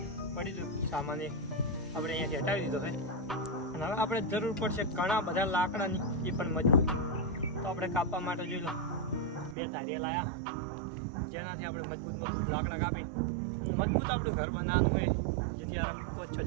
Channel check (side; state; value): left; drops out; at 9.6 s